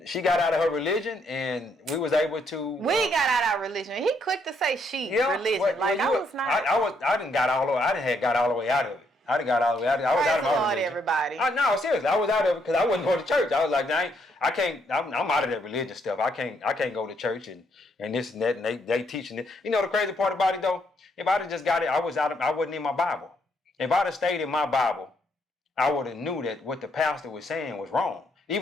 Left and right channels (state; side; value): normal; both; correlation 0.73